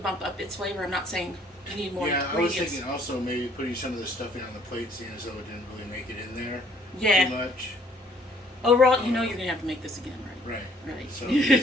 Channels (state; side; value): normal; both; correlation 0.61